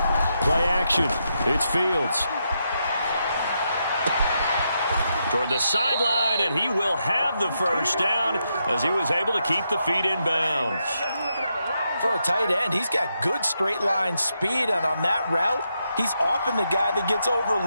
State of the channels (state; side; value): inverted; both; correlation -0.82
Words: Play action. It's Fields. Toward the sideline, and he will have the 1st down as he was able to keep the feet in bounds. For a tight end, he's got good straight line speed, and on that route, he's often the guy that gets